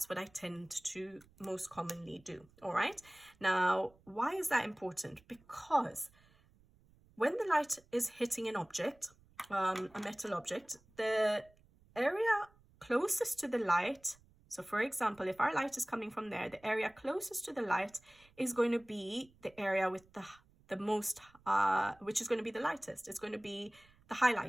what I tend to most commonly do. All right. Now, why is that important? Because when the light is hitting an object, a metal object, the area closest to the light, so for example, if our light is coming from there, the area closest to the light is going to be the area with the most, which is going to be the lightest. It's going to be the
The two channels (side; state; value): right; noise; rumble, 29 dB below the sound